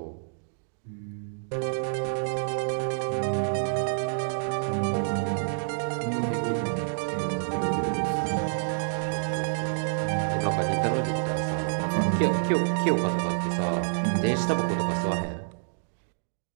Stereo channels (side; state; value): left; silent; digital silence